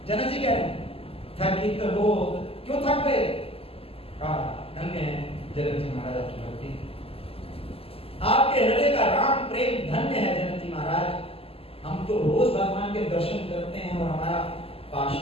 जनक जी कह रहे हैं थकित हो, क्यों थक गए? धन्य है जनक जी महाराज आपकी भक्ति, आपके हृदय का राम प्रेम धन्य है जनक जी महाराज। हम तो रोज भगवान के दर्शन करते हैं और हमारा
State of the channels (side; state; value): right; late; 0.28 ms